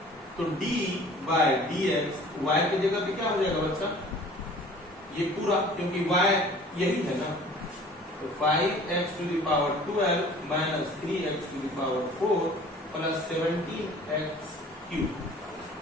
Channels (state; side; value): normal; both; correlation 0.48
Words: तो d by dx y की जगह पे क्या हो जाएगा बच्चा? ये पूरा, क्योंकि y यही है ना, तो 5x to the power 12 minus 3x to the power 4 plus 17x cube.